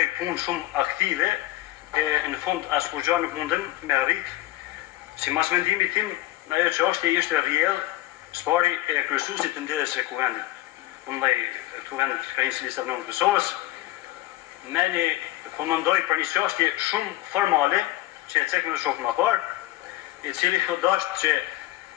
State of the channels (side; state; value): right; quieter; 16.4 dB